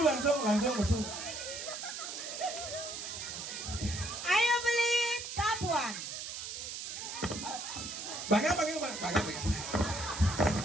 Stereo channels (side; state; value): right; noise; hiss, 7 dB below the sound